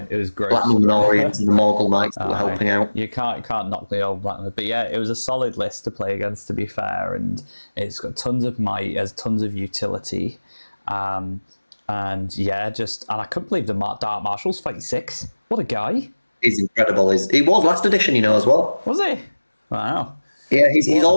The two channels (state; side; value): inverted; both; correlation -1.00